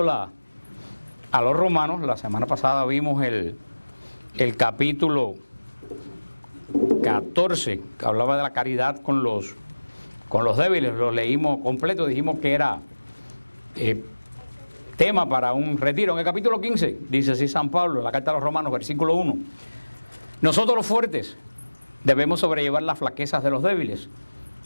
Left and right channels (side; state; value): both; inverted; correlation -1.00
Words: a los romanos. La semana pasada vimos el capítulo 14, que hablaba de la caridad con los débiles. Lo leímos completo, dijimos que era tema para un retiro. En el capítulo 15 dice así San Pablo, en la carta a los romanos, versículo 1: nosotros los fuertes debemos sobrellevar las flaquezas de los débiles